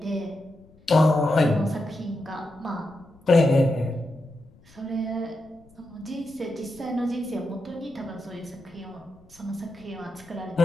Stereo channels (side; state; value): left; noise; rumble, 27 dB below the sound